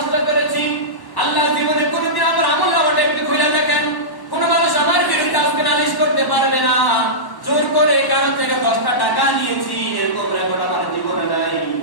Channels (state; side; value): late; right; 1.1 ms